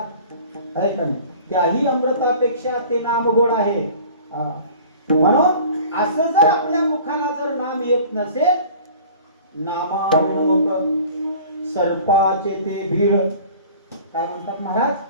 आहे का नाही, त्याही अमृतापेक्षा ते नाम गोड आहे. म्हणून असं जर आपल्या मुखाला जर नाम येत नसेल, नामाविणोक सर्पाचे ते भीड. काय म्हणतात महाराज?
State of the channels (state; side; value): inverted; both; correlation -0.45